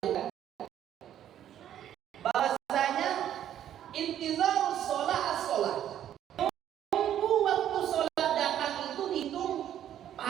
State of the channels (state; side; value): quieter; left; 10.8 dB